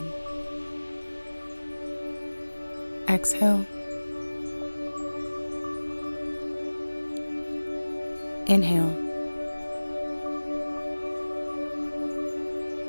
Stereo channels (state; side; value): inverted; both; correlation -1.00